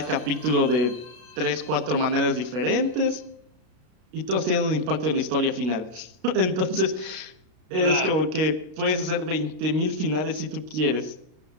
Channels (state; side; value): late; left; 33 ms